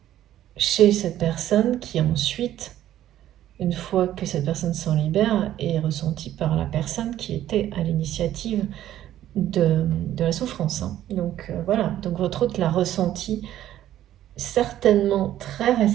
chez cette personne qui ensuite, une fois que cette personne s'en libère, est ressentie par la personne qui était à l'initiative de la souffrance. Hein. Donc voilà, donc votre hôte l'a ressenti certainement très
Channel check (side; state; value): left; quieter; 12.5 dB